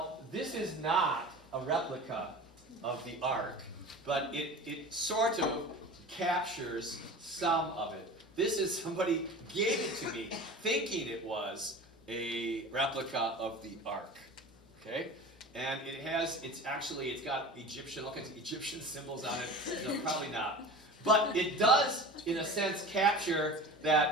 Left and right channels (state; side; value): normal; both; correlation 0.36